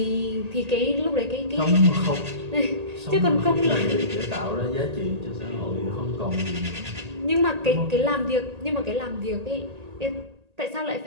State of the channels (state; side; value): late; left; 1.8 ms